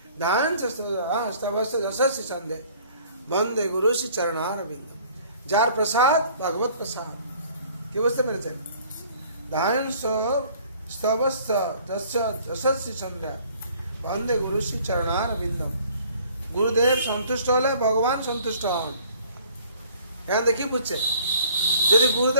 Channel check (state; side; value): inverted; both; correlation -0.54